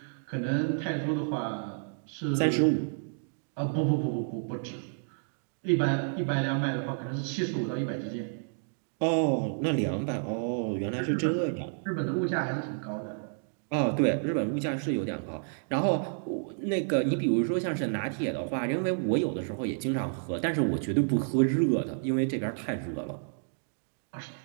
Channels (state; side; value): silent; left; digital silence